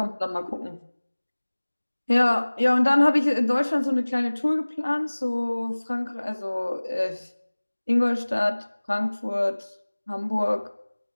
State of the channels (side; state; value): both; inverted; correlation -1.00